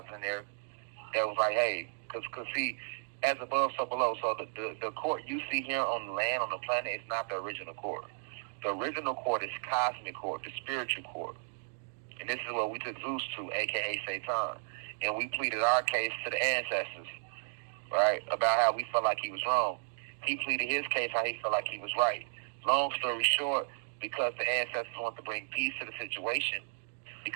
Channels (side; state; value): left; silent; digital silence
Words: in there that was like, hey, because see, as above, so below. So the court you see here on the land, on the planet, is not the original court. The original court is cosmic court, the spiritual court. And this is what we took Zeus to, a.k.a. Satan. And we pleaded our case to the ancestors, right, about how we felt like he was wrong. He pleaded his case how he felt like he was right. Long story short, because the ancestors want to bring peace to the situation,